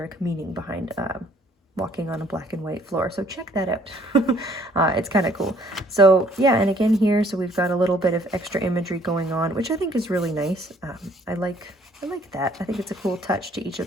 meaning behind walking on a black and white floor, so check that out. It's kind of cool. So yeah, and again here, so we've got a little bit of extra imagery going on, which I think is really nice. I like that. I think it's a cool touch to each of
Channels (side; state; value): both; normal; correlation 0.61